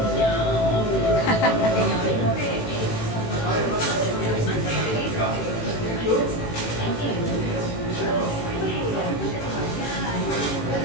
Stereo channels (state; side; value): late; right; 18 ms